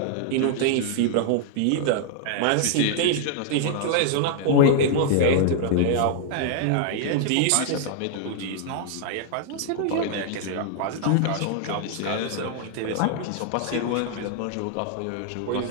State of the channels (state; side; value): different; both; correlation -0.01